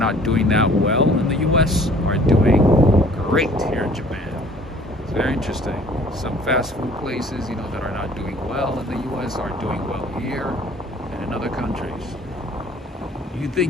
doing that well in the U.S. are doing great here in Japan. It's very interesting. Some fast food places, that are not doing well in the U.S. are doing well here and in other countries. You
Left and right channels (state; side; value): normal; both; correlation 0.53